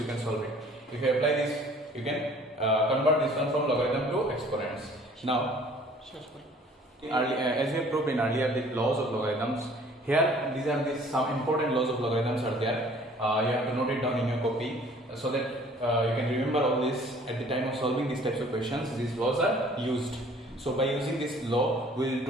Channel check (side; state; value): both; normal; correlation 0.53